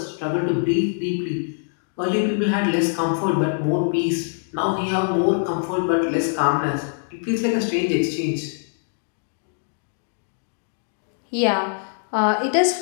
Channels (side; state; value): right; silent; digital silence